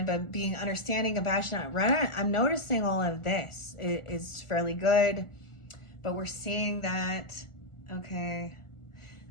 but being understanding, compassionate. I'm noticing all of this is fairly good, but we're seeing that. Okay.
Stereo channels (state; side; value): late; right; 1.4 ms